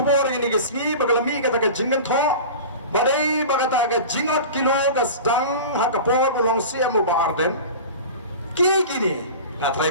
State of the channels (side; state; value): both; inverted; correlation -0.34